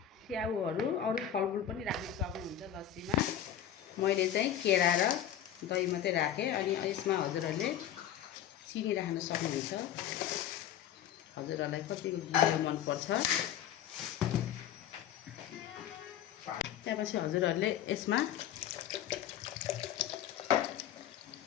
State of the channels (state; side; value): quieter; right; 10.3 dB